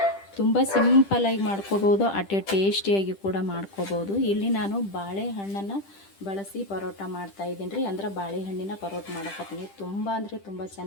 ತುಂಬ ಸಿಂಪಲ್ಲಾಗಿ ಮಾಡ್ಕೋಬೋದು, ಅಷ್ಟೇ ಟೇಸ್ಟಿಯಾಗಿ ಕೂಡ ಮಾಡ್ಕೋಬೋದು. ಇಲ್ಲಿ ನಾನು ಬಾಳೆಹಣ್ಣನ್ನು ಬಳಸಿ ಪರೋಟ ಮಾಡ್ತಾಯಿದ್ದೀನಿ ರೀ. ಅಂದ್ರೆ ಬಾಳೆಹಣ್ಣಿನ ಪರೋಟ ಮಾಡಕತ್ತೀನಿ. ತುಂಬ ಅಂದರೆ ತುಂಬ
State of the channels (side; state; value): right; late; 10 ms